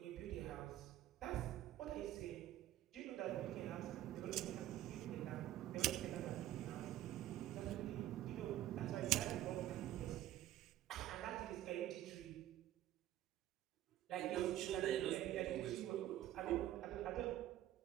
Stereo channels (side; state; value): left; quieter; 13.3 dB